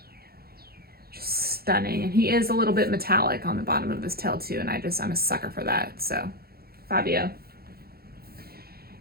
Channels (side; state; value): left; late; 0.45 ms